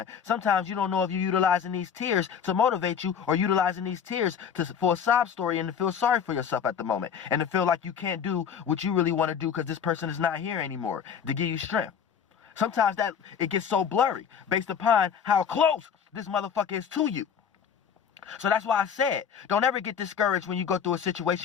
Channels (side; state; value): right; quieter; 7.5 dB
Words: Sometimes you don't know if you're utilizing these tears to motivate you, or utilizing these tears for a sob story and to feel sorry for yourself at the moment, and to feel like you can't do what you really want to do because this person is not here anymore to give you strength. Sometimes that it gets so blurry based upon how close this motherfucker is to you. So that's why I said, don't ever get discouraged when you go through a